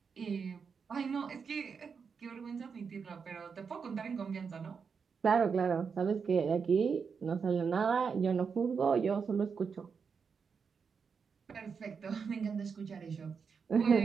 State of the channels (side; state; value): left; quieter; 5.9 dB